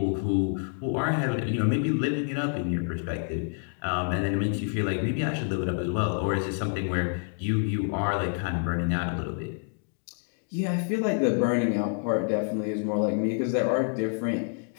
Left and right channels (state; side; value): silent; right; 59 dB below the other